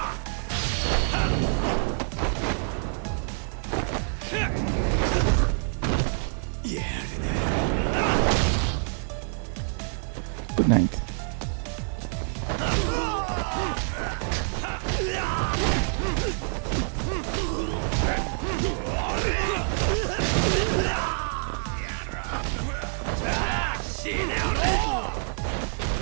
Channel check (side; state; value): left; silent; 57 dB below the other